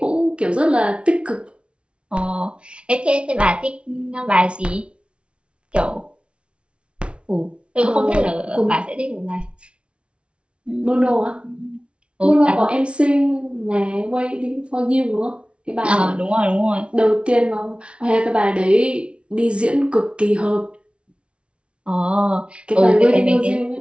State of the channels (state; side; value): late; left; 0.059 ms